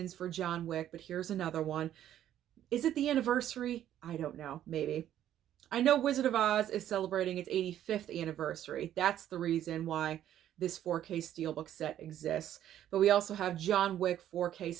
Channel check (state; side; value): quieter; left; 11.4 dB